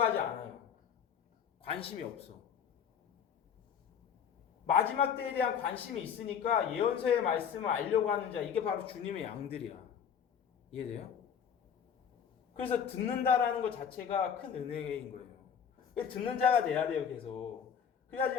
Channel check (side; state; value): right; quieter; 7.8 dB